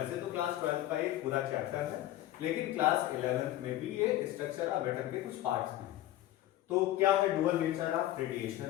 तो क्लास 12 का एक पूरा चैप्टर है, लेकिन क्लास 11th में भी ये स्ट्रक्चर ऑफ एटम के कुछ पार्ट्स में है। तो क्या है dual nature of radiation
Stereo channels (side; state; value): right; quieter; 14.3 dB